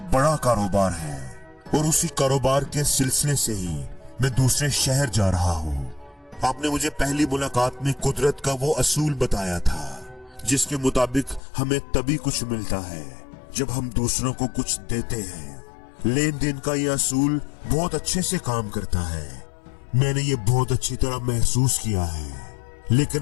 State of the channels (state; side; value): drops out; right; at 11.4 s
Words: बड़ा कारोबार है, और उसी कारोबार के सिलसिले से ही मैं दूसरे शहर जा रहा हूँ। आपने मुझे पहली मुलाकात में कुदरत का वो असूल बताया था जिसके मुताबिक हमें तभी कुछ मिलता है जब हम दूसरों को कुछ देते हैं। लेन देन का ये असूल बहुत अच्छे से काम करता है। मैंने ये बहुत अच्छी तरह महसूस किया है,